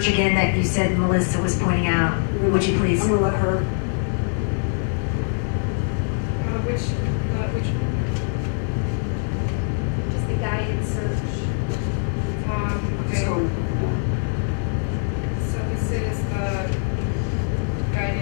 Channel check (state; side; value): silent; right; 63 dB below the other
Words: again that you said Melissa was pointing out? Would you please? I'm going to let her. Which just the guided search. Just go with it. So this is the